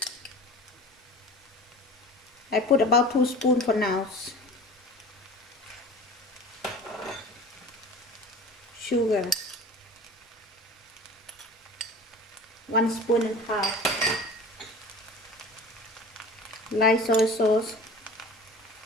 I put about 2 spoons for now. Sugar, 1.5 spoons. Light soy sauce,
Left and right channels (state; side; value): normal; both; correlation 0.39